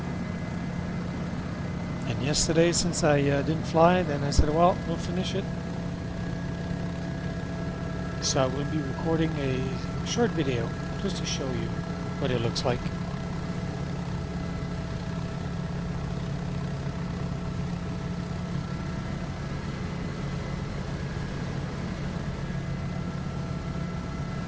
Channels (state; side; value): identical; both; correlation 1.00